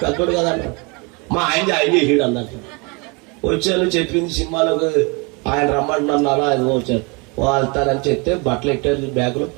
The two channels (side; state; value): left; quieter; 29.9 dB